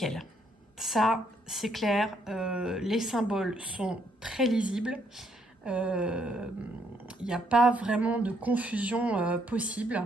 Ça, c'est clair, les symboles sont très lisibles. Il n'y a pas vraiment de confusion possible.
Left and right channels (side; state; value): both; normal; correlation 0.71